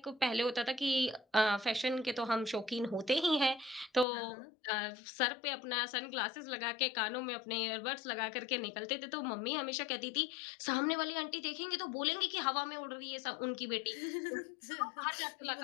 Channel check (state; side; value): drops out; right; at 4.0 s